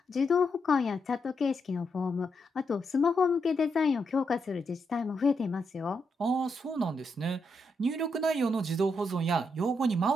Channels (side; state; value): both; normal; correlation 0.81